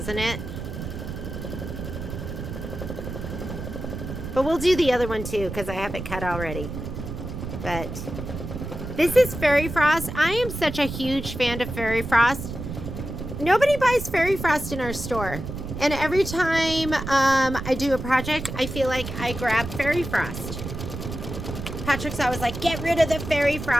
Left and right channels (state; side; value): noise; right; rumble, 7 dB below the sound